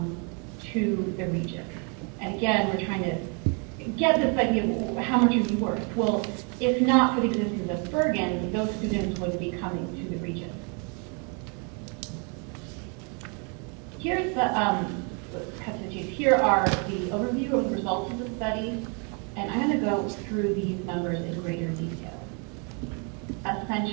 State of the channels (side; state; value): left; quieter; 36.5 dB